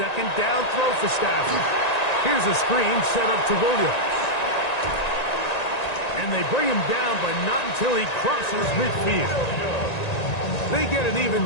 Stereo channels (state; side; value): late; right; 1.9 ms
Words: down throw for Stafford. Here's a screen set up to Williams. And they bring him down, but not until he crosses midfield. They get an even